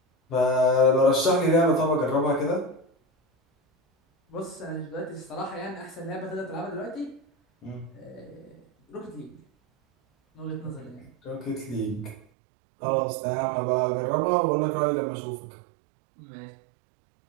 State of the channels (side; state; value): left; drops out; at 12.2 s